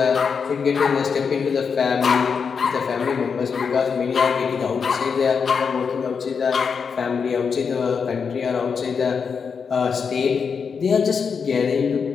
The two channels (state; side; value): quieter; right; 6.0 dB